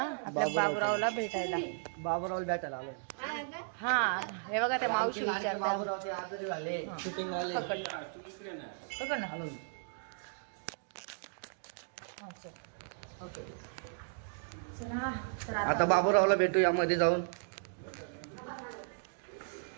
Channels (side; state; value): left; silent; digital silence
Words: आपल्या बाबूरावला भेटायला. आलो. हा हे बघा त्या मावशी विचारतात. बाबूरावचे आजारी झाले, शूटिंग आले. पकड ना. आता बाबूरावला भेटू यामध्ये जाऊन.